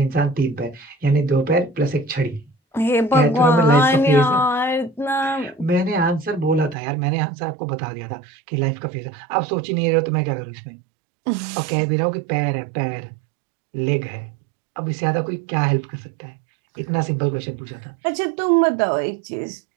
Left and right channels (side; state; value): left; drops out; at 6.8 s